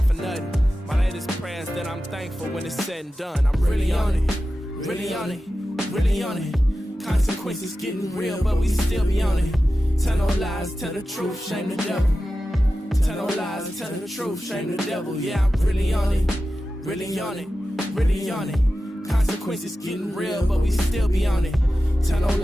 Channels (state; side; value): normal; both; correlation 0.93